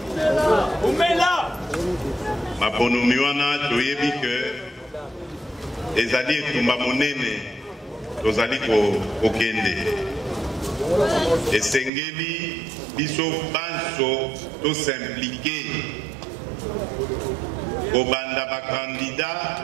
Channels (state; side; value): drops out; left; at 11.9 s